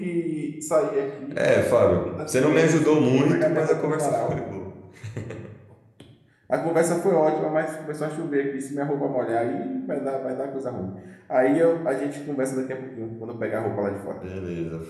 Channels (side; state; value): both; identical; correlation 1.00